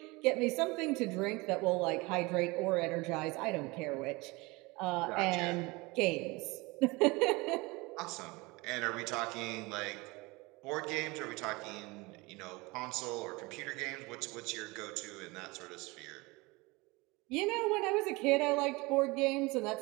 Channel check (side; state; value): left; quieter; 24.2 dB